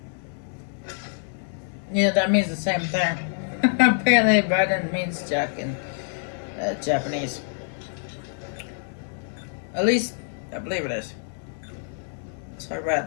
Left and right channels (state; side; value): silent; right; digital silence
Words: Yeah, that means the same thing. Apparently, Biden means Jack in Japanese. At least, I believe it is. So I